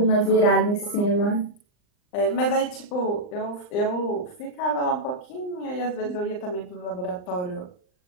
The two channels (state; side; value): late; right; 39 ms